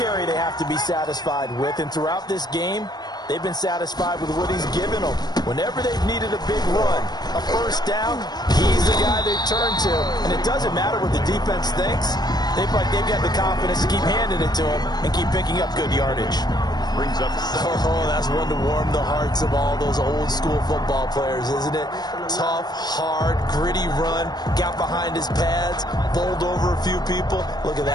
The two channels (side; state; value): right; late; 0.20 ms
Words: they have to be satisfied with. And throughout this game, they've been satisfied with what he's given them. Whenever they've needed a big run, a first down, he's the guy they've turned to. And it doesn't matter what the defense thinks. They've got the confidence to keep handing it to him and keep picking up good yardage. Brings up that's one to warm the hearts of all those old school football players, isn't it? Tough, hard, gritty run, got behind his pads, bowled over a few people. Look at